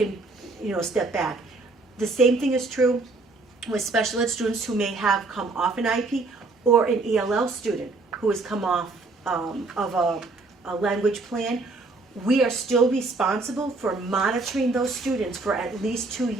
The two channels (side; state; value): left; quieter; 3.5 dB